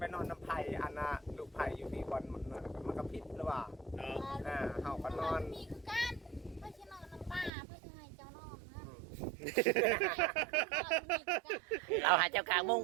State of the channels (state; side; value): drops out; left; at 7.5 s